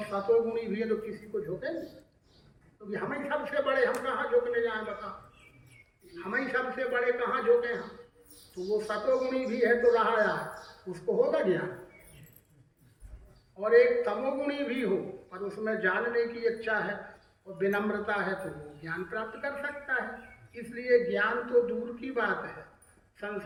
सतोगुणी भी हैं तो किसी को झोंकेंगे? तो हम ही सबसे बड़े, हम कहाँ झोंकने जाए बताओ? हम ही सबसे बड़े कहाँ झोंके हम? तो वो सतोगुणी भी है तो रहा यार, उसको होगा ज्ञान। और एक तमोगुणी भी हो पर उसमें जानने की इच्छा है और विनम्रता है तो वो ज्ञान प्राप्त कर सकता है। इसलिए ज्ञान तो दूर की बात है,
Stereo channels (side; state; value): both; identical; correlation 1.00